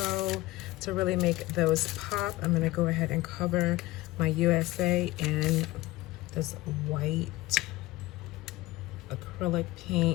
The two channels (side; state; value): right; quieter; 18.6 dB